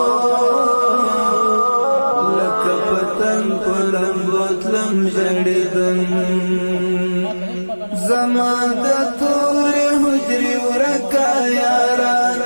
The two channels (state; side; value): inverted; both; correlation -1.00